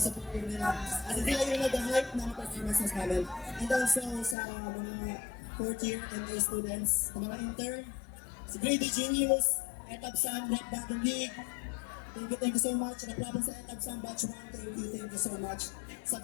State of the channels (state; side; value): drops out; right; at 4.4 s